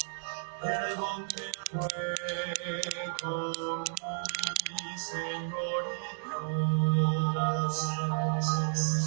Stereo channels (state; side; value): silent; left; digital silence